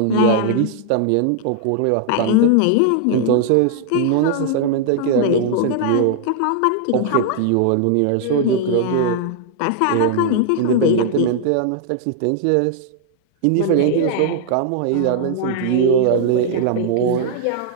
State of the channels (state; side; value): different; both; correlation 0.00